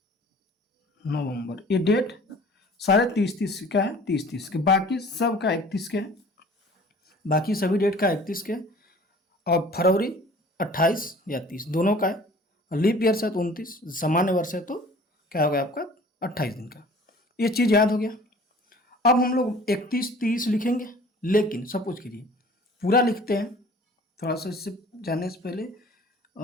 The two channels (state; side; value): normal; both; correlation 0.48